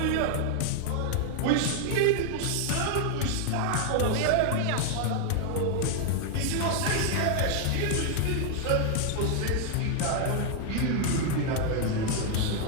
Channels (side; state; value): both; different; correlation 0.00